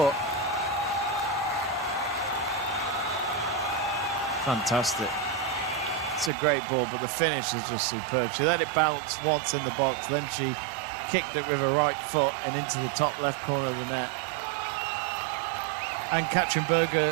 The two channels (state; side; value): drops out; left; at 6.3 s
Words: Fantastic. It's a great ball, but the finish is just superb. She let it bounce once in the box, then she kicked it with her right foot and into the top left corner of the net. And Katrin